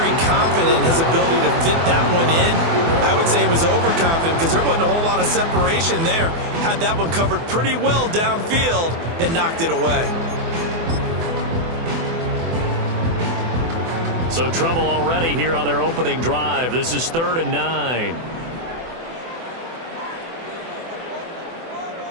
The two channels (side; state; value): left; late; 24 ms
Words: confident in his ability to fit that one in. I would say he was overconfident because there wasn't a whole lot of separation there. Had that one covered pretty well downfield and knocked it away. So trouble already here on their opening drive. This is 3rd and 9.